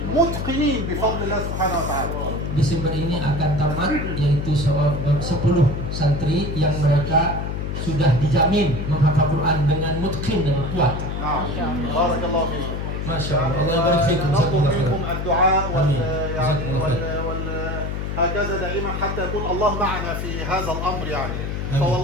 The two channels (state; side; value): noise; left; hum, 3 dB below the sound